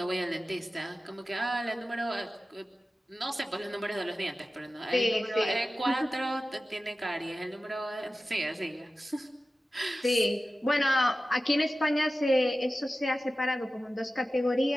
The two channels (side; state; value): both; normal; correlation 0.95